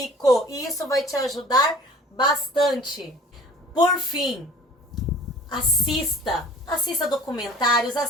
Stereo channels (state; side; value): normal; both; correlation 0.47